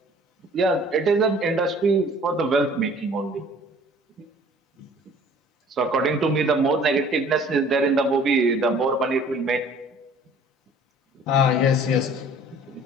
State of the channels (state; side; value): normal; both; correlation 0.52